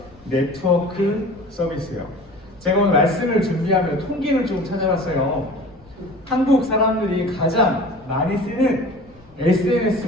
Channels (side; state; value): left; noise; rumble, 27 dB below the sound